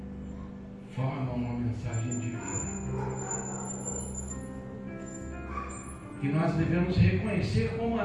formam uma mensagem divina que nós devemos reconhecer como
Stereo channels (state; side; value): identical; both; correlation 1.00